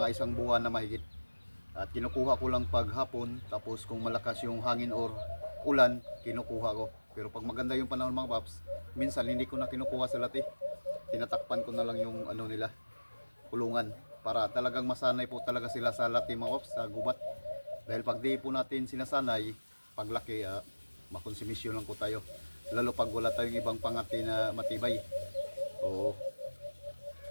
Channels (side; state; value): both; inverted; correlation -1.00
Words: 1 buwan na mahigit. At kinukuha ko lang pag hapon. Tapos kung malakas yung hangin or ulan, kinukuha ko. Pero pag maganda yung panahon mga paps, minsan hindi ko na kinukuha sa lati. Tinatakpan ko na lang yung nila, kulungan, para talagang masanay po talaga sila sa lati mga paps, sa gubat. Dahil pag di po natin sinasanay, paglaki makonsumisyon lang po tayo, lalo pag wala tayong ibang pangati na matibay. Oo.